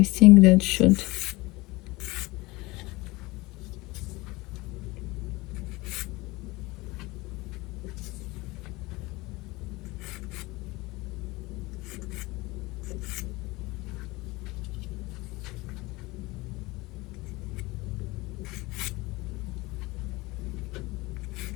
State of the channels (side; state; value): right; quieter; 22.0 dB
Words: think that should.